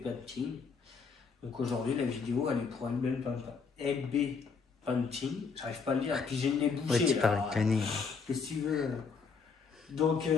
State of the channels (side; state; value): right; quieter; 5.2 dB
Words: Painting. Donc aujourd'hui, la vidéo elle est pour LB Painting, j'arrive pas à le dire, puis j'ai le nez bouché. Ouais, tu parles cané. Qu'est-ce que tu veux? Donc